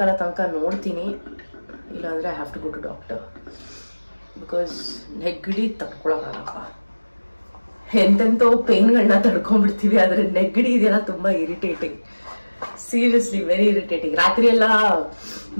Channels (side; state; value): both; inverted; correlation -1.00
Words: ತನಕ ನೋಡ್ತೀನಿ, ಇಲ್ಲಾಂದ್ರೆ I have to go to doctor because ನೆಗಡಿ ತಡ್ಕೊಳಕ್ಕಾಗಪ್ಪ. ಎಂತೆಂತೋ ಪೇನ್ಗಳನ್ನ ತಡ್ಕೊಂಡ್ಬಿಡ್ತೀವಿ, ಆದ್ರೆ ನೆಗಡಿ ಇದೆಲ್ಲ ತುಂಬಾ ಇರಿಟೇಟಿಂಗ್, ಸೀರಿಯಸ್ಲಿ ವೆರಿ ಇರಿಟೇಟಿಂಗ್. ರಾತ್ರಿ ಎಲ್ಲ